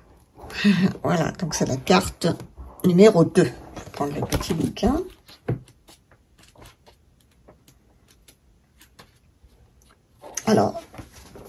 Voilà, donc c'est la carte numéro 2. Je vais prendre le petit bouquin. Alors,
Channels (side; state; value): both; identical; correlation 1.00